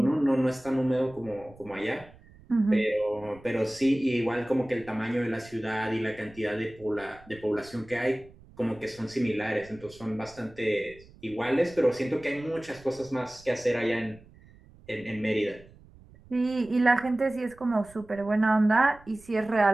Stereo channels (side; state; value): right; noise; rumble, 24 dB below the sound